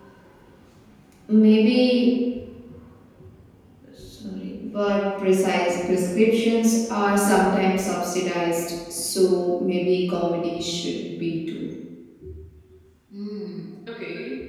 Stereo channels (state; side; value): identical; both; correlation 1.00